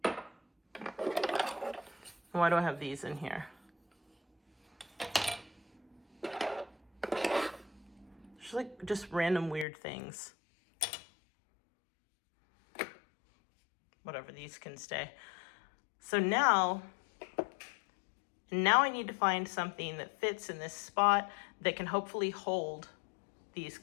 Why do I have these in here? Just random weird things. Whatever, these can stay. So now I need to find something that fits in this spot that can hopefully hold these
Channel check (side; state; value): right; drops out; at 9.7 s